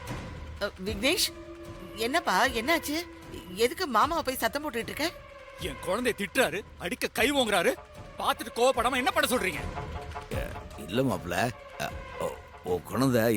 விக்னேஷ், என்னப்பா என்னாச்சு? எதுக்கு மாமாவை போய் சத்தம் போட்டுட்டு இருக்க? என் குழந்தைய திட்டுறாரு, அடிக்க கை ஓங்குறாரு. பார்த்துட்டு கோவப்படாம என்ன பண்ண சொல்றீங்க? இல்ல மாப்ள, ஓ குழந்தை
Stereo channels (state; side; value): identical; both; correlation 1.00